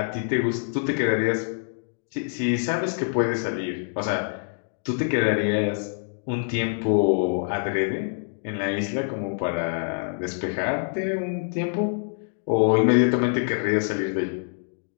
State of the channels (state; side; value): silent; right; digital silence